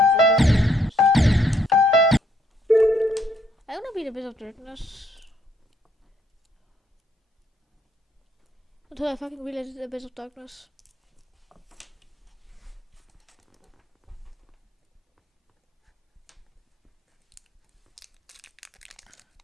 I want to be the Bit of Darkness. until I fucking realized the Abyss of Darkness.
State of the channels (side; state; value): both; normal; correlation 0.69